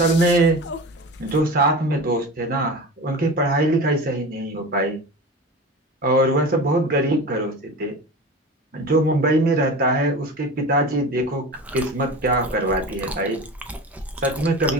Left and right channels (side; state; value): both; normal; correlation 0.31